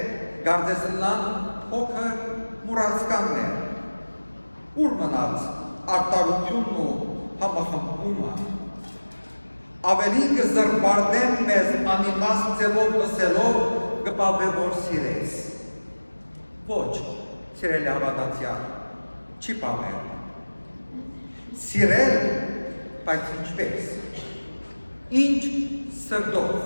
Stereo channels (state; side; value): inverted; both; correlation -1.00